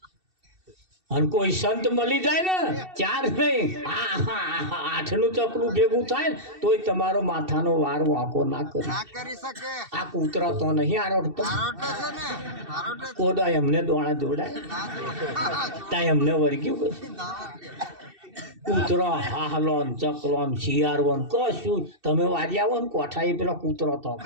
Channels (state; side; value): late; left; 2.7 ms